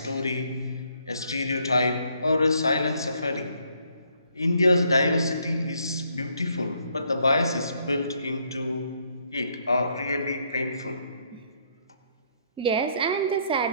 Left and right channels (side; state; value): both; inverted; correlation -0.70